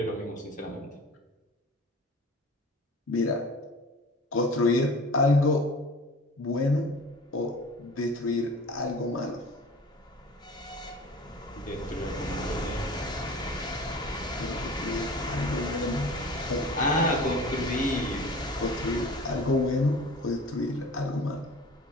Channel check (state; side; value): normal; both; correlation 0.41